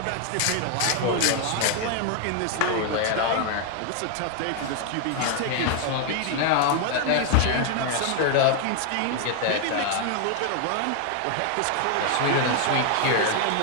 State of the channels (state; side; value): different; both; correlation 0.00